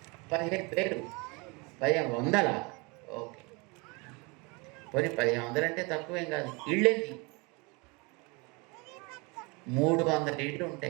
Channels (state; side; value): quieter; left; 28.3 dB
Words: 15,000. 1,500. ఓకే, పోనీ 1,500 అంటే తక్కువేం కాదు. ఇళ్ళేంది 300 ఇళ్ళు